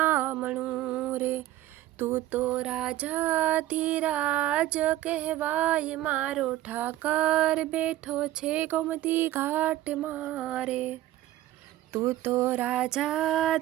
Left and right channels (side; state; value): left; quieter; 14.5 dB